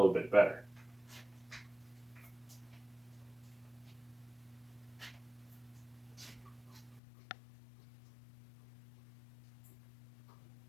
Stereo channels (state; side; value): drops out; right; at 7.0 s